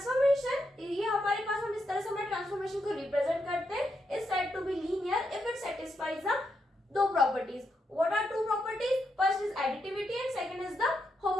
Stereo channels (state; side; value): normal; both; correlation 0.82